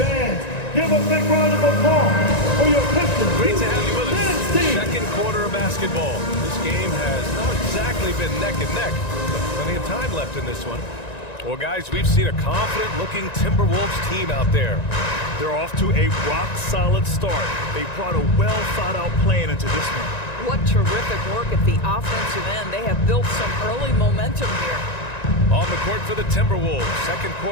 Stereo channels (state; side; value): late; right; 1.9 ms